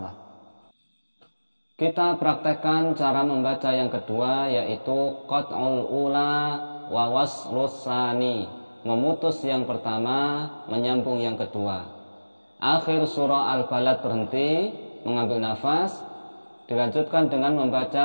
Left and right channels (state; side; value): inverted; both; correlation -1.00